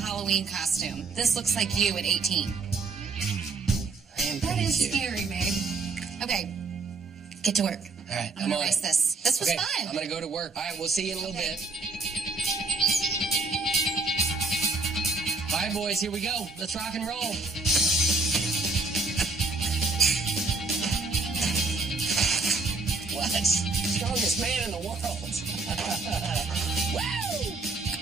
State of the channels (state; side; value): quieter; left; 3.8 dB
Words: costume. This looks like you at 18. I am pretty cute. Scary, babe. Okay. Get to work. All right, I'm gonna on erase it. this. This was Okay, fun. I'm going to go to work. All right, we'll see you in a little bit. All right, boys, here we go. Let's rock and roll. What? Strongest man in the world. Woo!